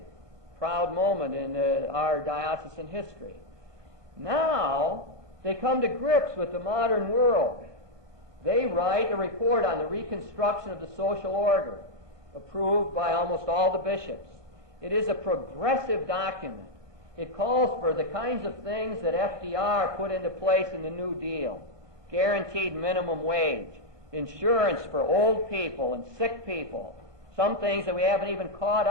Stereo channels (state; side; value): late; left; 1.2 ms